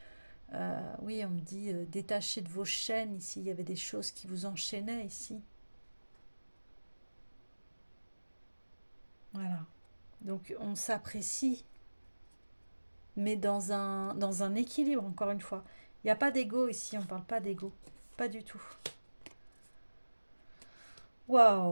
oui, on me dit détaché de vos chaînes ici. Il y avait des choses qui vous enchaînaient ici. Voilà. Donc on s'apprécie, mais dans un équilibre, encore une fois. Il n'y a pas d'ego ici, on ne parle pas d'ego. Pas du tout.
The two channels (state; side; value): inverted; both; correlation -1.00